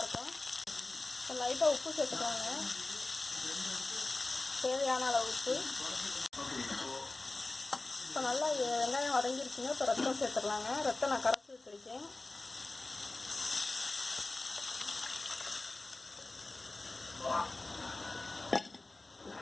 இப்போ லைட்டாக உப்பு சேர்த்துக்கலாங்க, தேவையான அளவு உப்பு. இப்போ நல்லா வெங்காயம் வதங்கிருச்சுங்க. இப்போ ரத்தம் சேர்த்துடலாங்க. ரத்தம் நான் கரைச்சி வச்சுருக்கேன்.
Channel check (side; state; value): right; quieter; 3.1 dB